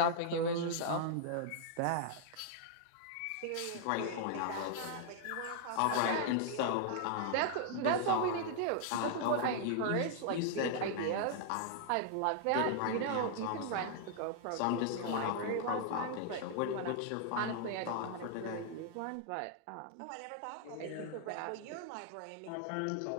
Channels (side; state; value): both; different; correlation -0.01